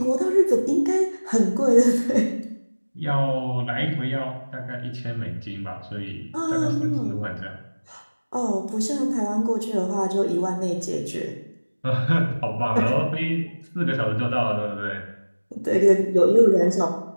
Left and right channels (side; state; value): both; inverted; correlation -1.00